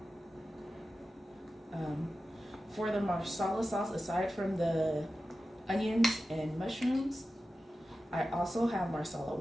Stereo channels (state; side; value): normal; both; correlation 0.93